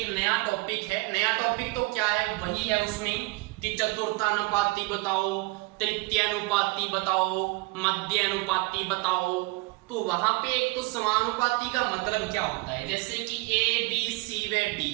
नया टॉपिक है। नया टॉपिक तो क्या है, वही है उसमें कि चतुर्थानुपाती बताओ, तृतीयानुपाती बताओ, मध्यानुपाती बताओ। तो वहां पे एक तो समानुपाती का मतलब क्या होता है, जैसे कि a b c व d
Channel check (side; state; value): left; quieter; 24.7 dB